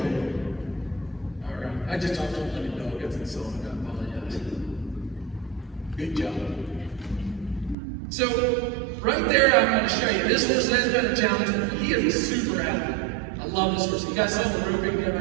All right. I just talked to him like a dog gets insulted. I apologize. Good job. So, right there, I'm going to show you. This horse has been a challenge for me. He is a super athlete. I love this horse. You guys saw the roping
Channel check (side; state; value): left; drops out; at 7.8 s